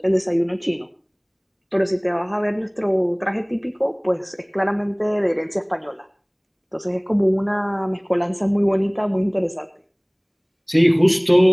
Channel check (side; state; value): both; identical; correlation 1.00